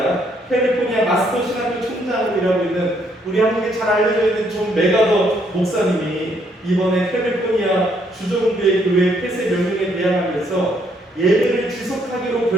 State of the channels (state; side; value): normal; both; correlation 0.70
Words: 캘리포니아 마스터 신학교 총장으로 일하고 있는 우리 한국에 잘 알려져 있는 존 메가더 목사님이 이번에 캘리포니아 주정부의 교회 폐쇄 명령에 대항하면서 예배를 지속하기로